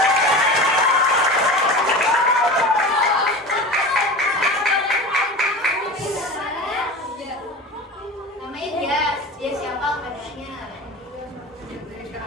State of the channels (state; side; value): normal; both; correlation 0.32